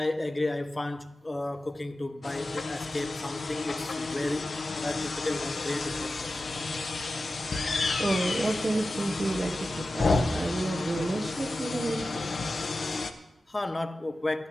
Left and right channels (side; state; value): both; normal; correlation 0.94